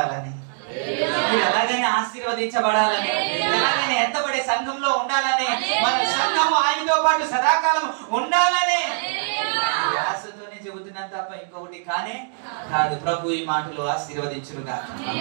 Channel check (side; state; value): left; silent; digital silence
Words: మీరు ఎలాగైనా ఆశీర్వదించబడాలని, ఎలాగైనా ఎత్తబడే సంఘంలో ఉండాలని, మన సంఘము ఆయనతో పాటు సదాకాలం ఉండాలని ఆశతోనే చెబుతున్నాను తప్ప ఇంకొకటి కానే కాదు. ప్రభు ఈ మాటలు ఆశీర్వదించును గాక.